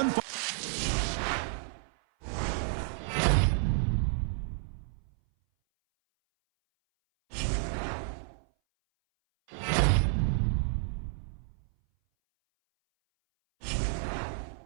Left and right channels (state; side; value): silent; left; 57 dB below the other